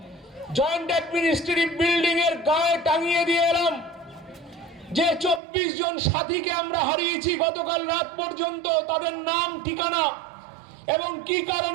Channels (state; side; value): drops out; left; at 5.4 s